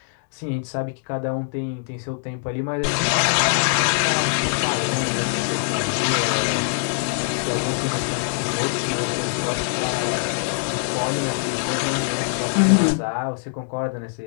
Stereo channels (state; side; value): silent; right; digital silence